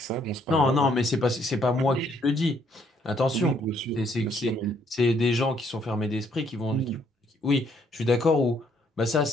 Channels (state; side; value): normal; both; correlation 0.68